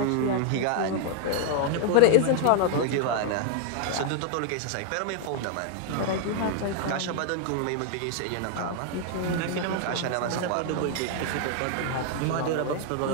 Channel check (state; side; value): different; both; correlation 0.00